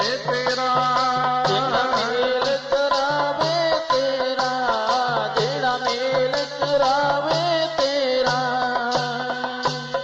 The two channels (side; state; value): both; identical; correlation 1.00